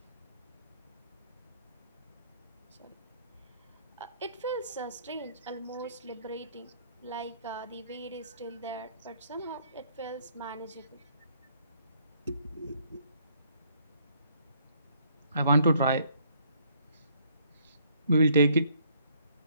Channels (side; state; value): both; inverted; correlation -0.66